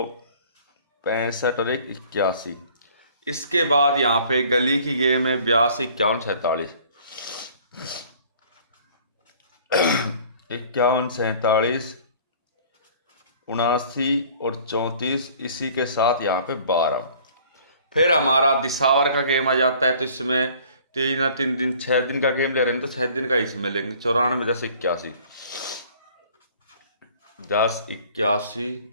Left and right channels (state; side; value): inverted; both; correlation -0.52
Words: 65 और 1 81। इसके बाद यहाँ पे गली की गेम है 82 51 47, 51 47 79 और 34, इसी के साथ यहाँ पे 12। फिर हमारा दिसावर का गेम आ जाता है, तो इसमें 3 दिन 6 दिन का गेम ले रहे हैं, तो 6 दिन का इसमें लेंगे। 94 10 81 10 81